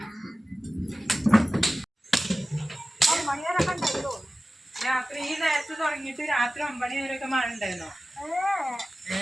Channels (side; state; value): both; normal; correlation 0.95